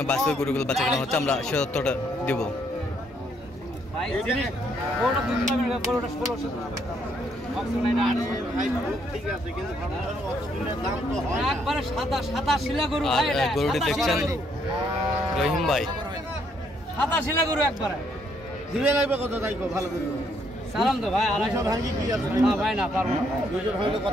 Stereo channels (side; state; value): both; normal; correlation 0.71